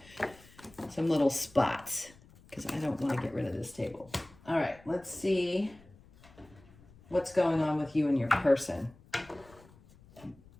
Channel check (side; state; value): left; noise; rumble, 25 dB below the sound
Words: Some little spots, because I don't want to get rid of this table. All right, let's see what's going on with you and your person.